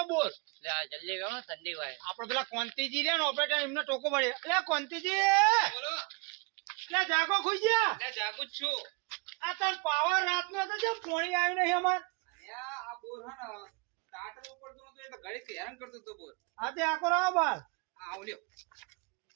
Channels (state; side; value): quieter; left; 29.9 dB